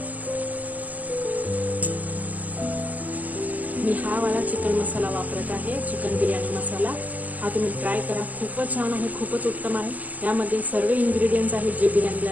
मी हा वाला चिकन मसाला वापरत आहे, चिकन बिर्याणी मसाला। हा तुम्ही ट्राय करा, खूपच छान आहे, खूपच उत्तम आहे। यामध्ये सर्व इन्ग्रेडियंट्स आहेत जे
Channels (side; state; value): left; late; 0.079 ms